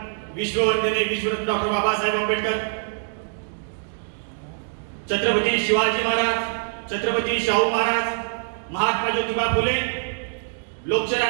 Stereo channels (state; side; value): silent; left; digital silence